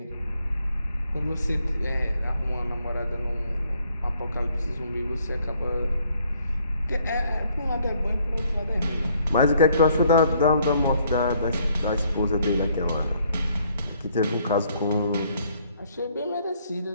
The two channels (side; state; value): both; inverted; correlation -0.67